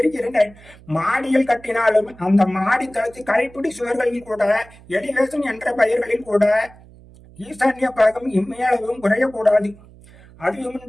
மாடியில் கட்டினாலும் அந்த மாடி தளத்து கைப்பிடி சுவர்களில் கூட, எலிவேஷன் என்ற பெயர்களில் கூட ஈசான்ய பாகம் இம்மையளவும் குறையக்கூடாது.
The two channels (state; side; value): noise; right; hum, 23 dB below the sound